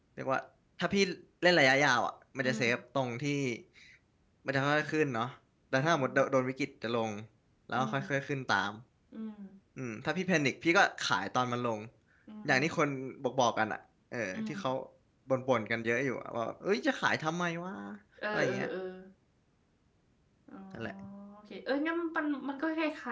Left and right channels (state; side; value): identical; both; correlation 1.00